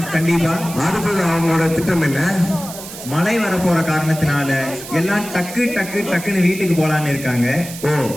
கண்டிப்பா. அடுத்தது அவங்களோட திட்டம் என்ன? மழை வரப்போற காரணத்தினால எல்லாம் டக்கு டக்கு டக்குன்னு வீட்டுக்கு போலான்னு இருக்காங்க. ஓ,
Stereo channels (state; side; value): noise; right; hiss, 12 dB below the sound